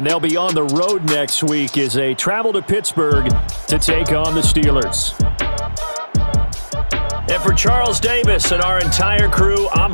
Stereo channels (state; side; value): inverted; both; correlation -1.00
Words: they'll be on the road next week as they travel to Pittsburgh to take on the Steelers. And for Charles Davis and our entire crew, I'm